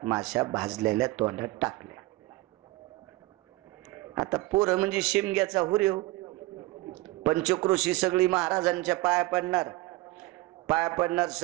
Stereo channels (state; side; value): quieter; left; 19.9 dB